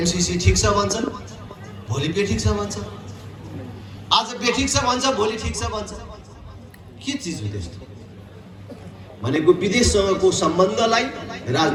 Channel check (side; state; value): both; identical; correlation 1.00